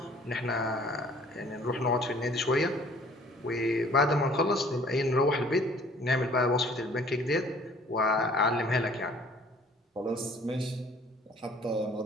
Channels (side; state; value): both; normal; correlation 0.54